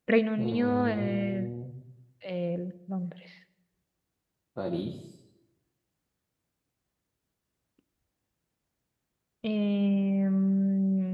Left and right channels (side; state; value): both; identical; correlation 1.00